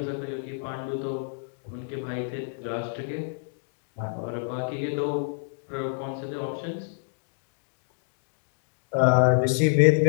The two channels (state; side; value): silent; right; digital silence